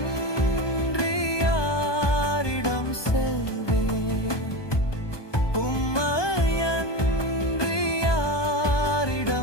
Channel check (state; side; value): late; right; 1.2 ms